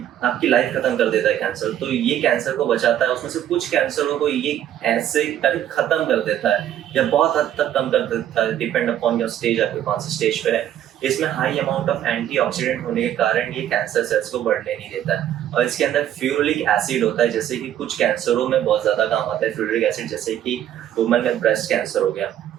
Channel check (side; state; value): left; quieter; 11.1 dB